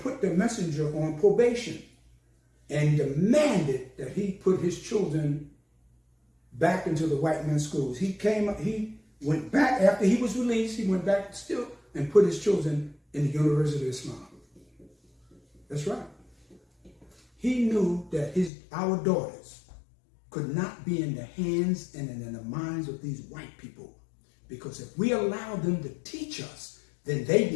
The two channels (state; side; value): drops out; right; at 18.5 s